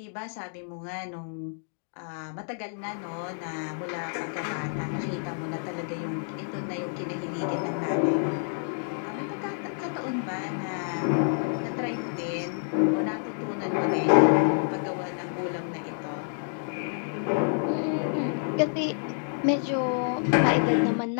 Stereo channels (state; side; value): silent; right; digital silence